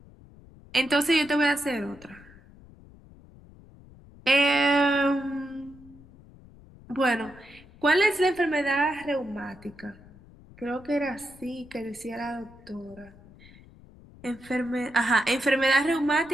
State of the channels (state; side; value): noise; left; rumble, 23 dB below the sound